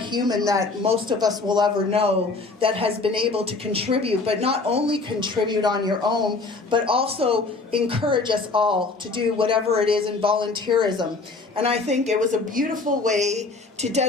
that most of us will ever know that has been able to contribute, but not only contribute on your own, but also encourage us all to do whatever it is in volunteerism. And I think it was a beautiful way to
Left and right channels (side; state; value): right; quieter; 3.7 dB